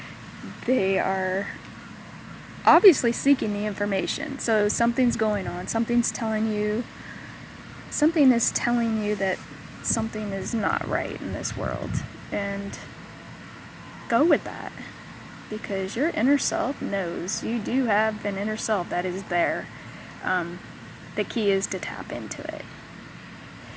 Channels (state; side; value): identical; both; correlation 1.00